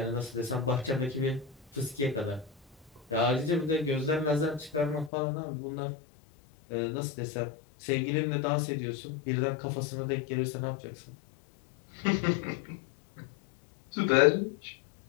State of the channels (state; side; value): drops out; right; at 5.1 s